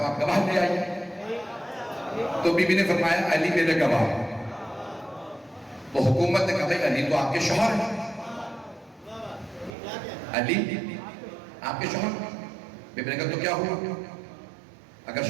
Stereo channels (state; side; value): drops out; left; at 9.8 s